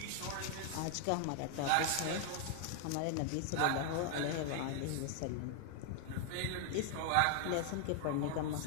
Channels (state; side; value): different; both; correlation 0.00